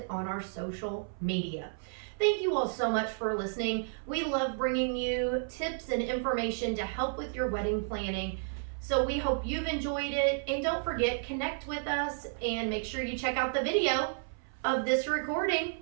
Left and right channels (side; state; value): left; silent; 56 dB below the other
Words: on our social media. Thank you all so much for listening. We love bringing you tips and information to help with your wedding planning. So we hope you've enjoyed it, and don't forget, connect with us and make sure you check out the video of this recording